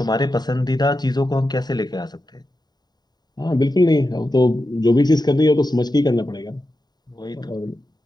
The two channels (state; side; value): late; right; 0.20 ms